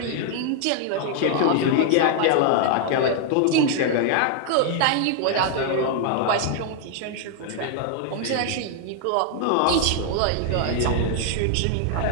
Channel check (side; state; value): both; different; correlation 0.00